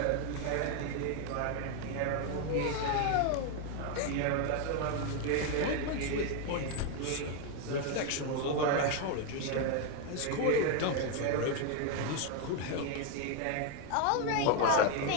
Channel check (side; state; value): both; different; correlation 0.01